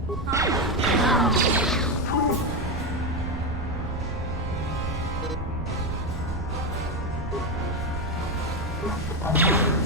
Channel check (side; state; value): right; noise; rumble, 9 dB below the sound